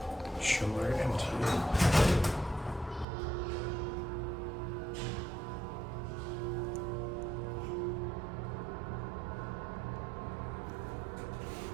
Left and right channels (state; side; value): drops out; left; at 3.1 s